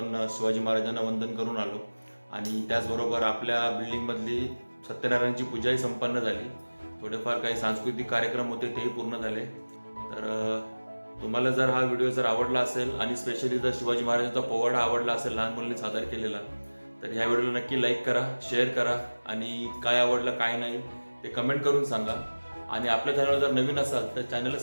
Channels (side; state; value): both; inverted; correlation -1.00